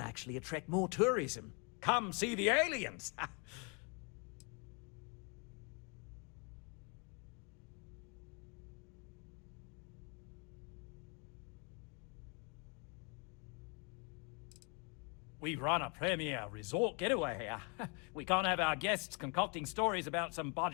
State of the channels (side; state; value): right; quieter; 33.9 dB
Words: attract more tourism. Come see the aliens! We run a premier resort getaway here. We can't have our guests concocting stories about some